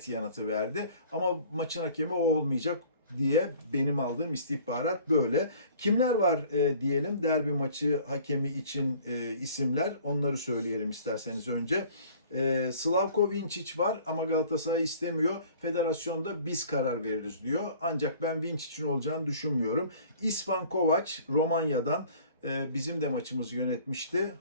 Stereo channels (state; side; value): inverted; both; correlation -0.51